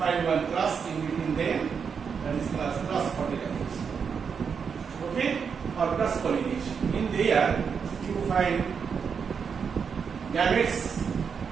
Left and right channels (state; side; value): quieter; left; 6.4 dB